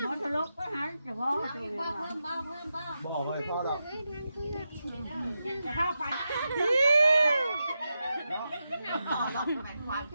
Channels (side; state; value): both; inverted; correlation -0.89